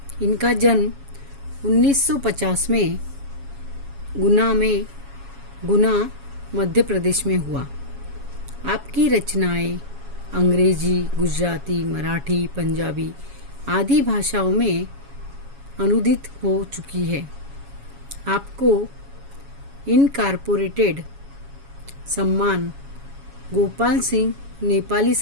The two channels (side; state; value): left; late; 7.2 ms